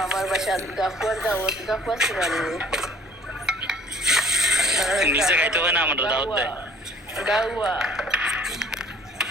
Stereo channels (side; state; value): both; normal; correlation 0.54